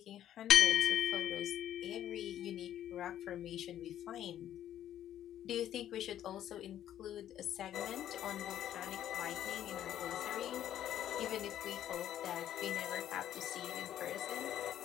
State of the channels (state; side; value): quieter; right; 11.3 dB